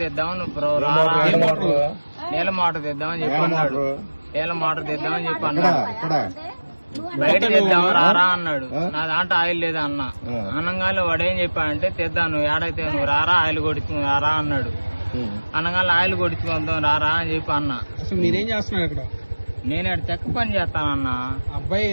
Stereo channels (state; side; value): inverted; both; correlation -1.00